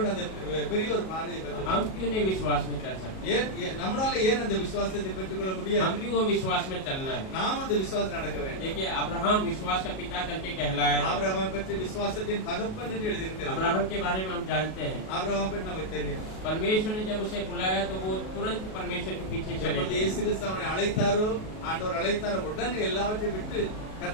அந்த பெரிய ஒரு பார்வையை பெற்றார். हम क्यों नहीं विश्वास में चल सकते? நம்மளால ஏன் அந்த விசுவாசத்தை பெற்றுக்கொள்ள முடியாது? हम क्यों वो विश्वास में चलना है? நாம் அந்த விசுவாசம் நடக்க வேண்டும். देखिए अब्राहम विश्वास का पिता करके कहलाया है। ஆபிரகாமை பற்றி விசுவாசத்தின் தகப்பன் என்று எழுதியிருக்கிறது. अब्राहम के बारे में हम जानते हैं, ஆபிரகாமை பற்றி நமக்கு தெரியும். परमेश्वर ने जब उसे बुलाया तो वो तुरंत परमेश्वर के पीछे चले எப்பொழுது गए। இயேசு கிறிஸ்து அவனை அழைத்தாரோ, ஆண்டவர் அழைத்தாரோ, உடனே எல்லாவற்றையும் விட்டு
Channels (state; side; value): late; right; 37 ms